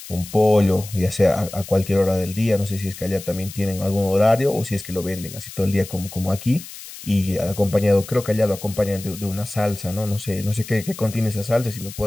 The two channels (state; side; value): noise; left; hiss, 14 dB below the sound